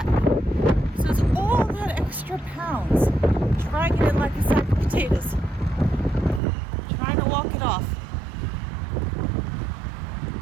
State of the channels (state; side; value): drops out; left; at 6.4 s